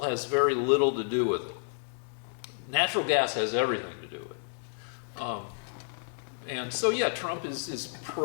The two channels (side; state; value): right; silent; 57 dB below the other